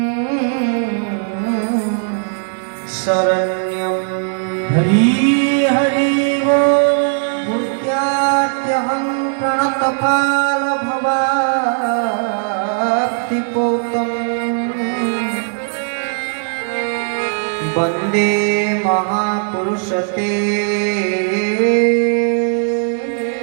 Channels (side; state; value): left; silent; 65 dB below the other